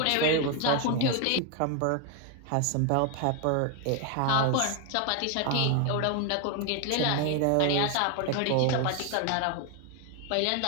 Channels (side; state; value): both; different; correlation 0.01